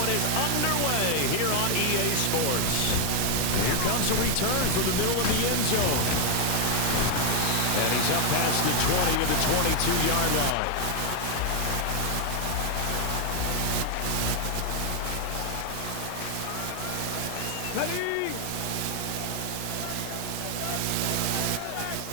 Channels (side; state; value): both; different; correlation 0.00